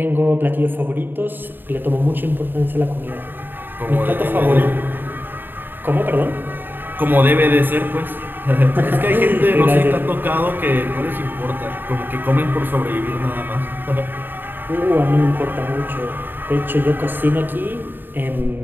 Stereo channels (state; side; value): late; left; 0.094 ms